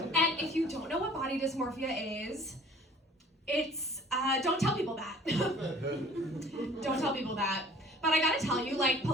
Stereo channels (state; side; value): normal; both; correlation 0.50